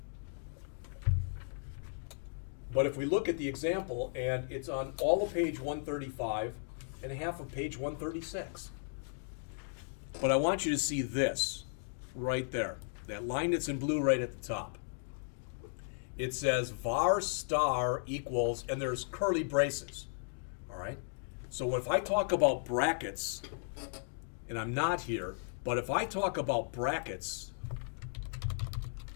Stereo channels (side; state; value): right; silent; digital silence